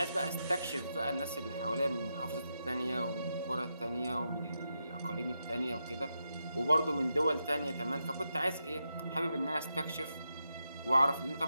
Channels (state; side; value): inverted; both; correlation -0.86